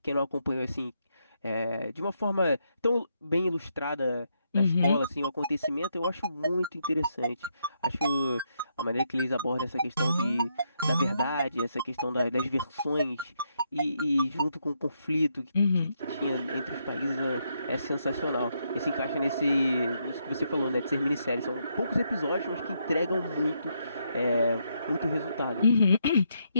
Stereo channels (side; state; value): both; inverted; correlation -0.78